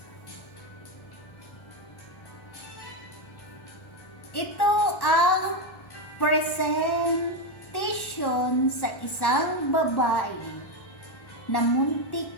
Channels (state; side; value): late; right; 1.1 ms